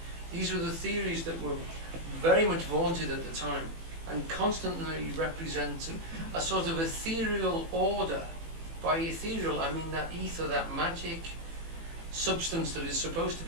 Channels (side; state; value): left; late; 18 ms